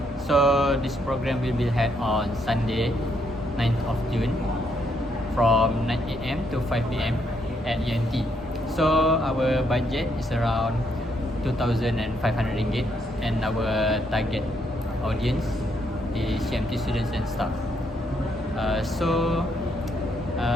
So this program will be held on Sunday, 9th of June, from 9 a.m. to 5 p.m. at UNT. So our budget is around 2,500 ringgit, and our target audience is CMT students and staff.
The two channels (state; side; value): normal; both; correlation 0.74